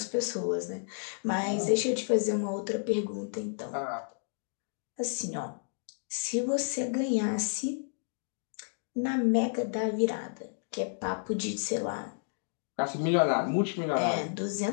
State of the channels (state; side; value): silent; right; digital silence